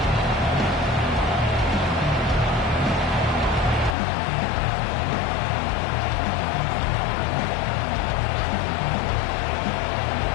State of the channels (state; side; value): drops out; right; at 4.0 s